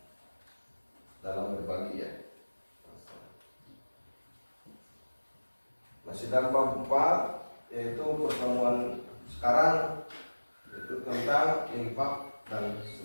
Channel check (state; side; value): inverted; both; correlation -1.00